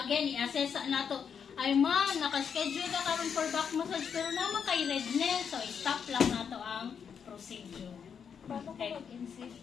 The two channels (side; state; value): right; quieter; 7.1 dB